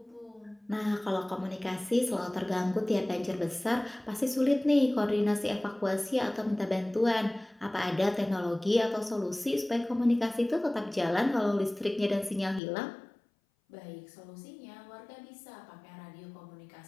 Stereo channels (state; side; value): drops out; right; at 12.6 s